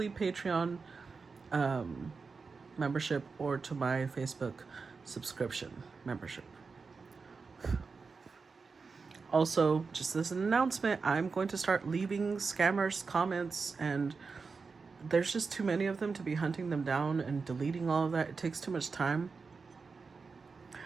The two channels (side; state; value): left; quieter; 4.7 dB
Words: Patreon membership or to my Facebook subscription membership. Also, just as an announcement, I'm going to start leaving scammers comments, and there's just too many of them to be hunting them down and deleting all of that. It takes too much time.